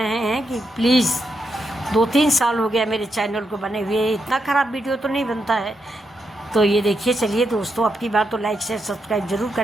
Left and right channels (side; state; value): both; normal; correlation 0.83